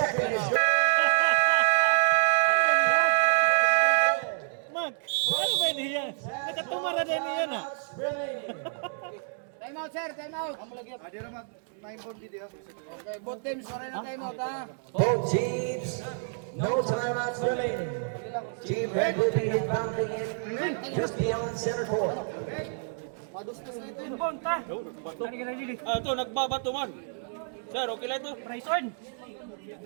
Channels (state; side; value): silent; left; digital silence